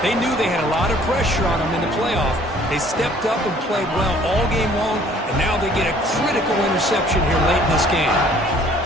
They knew they had a lot of pressure on them in the playoff. They stepped up and played well all game long, and now they get a critical interception here late in this game.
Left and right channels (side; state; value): both; normal; correlation 0.56